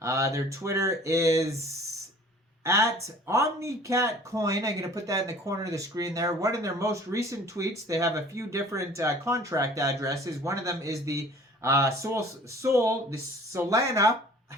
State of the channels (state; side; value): normal; both; correlation 0.49